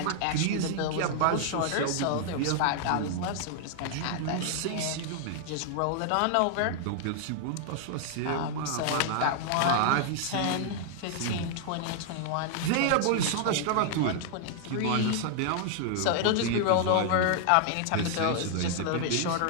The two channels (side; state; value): both; different; correlation -0.01